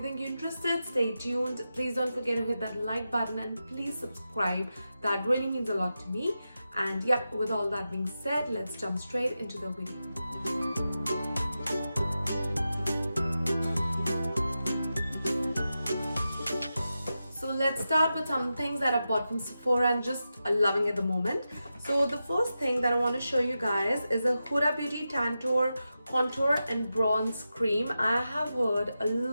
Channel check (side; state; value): both; inverted; correlation -0.91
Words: think you're interested, stay tuned. Please don't forget to hit that like button and please subscribe. That really means a lot to me. And yep, with all that being said, let's jump straight into the video. So let's start with some things that I've bought from Sephora and just loving at the moment. So the first thing that I want to show you guys is a Huda Beauty Tantour Contour and Bronze Cream. I have heard a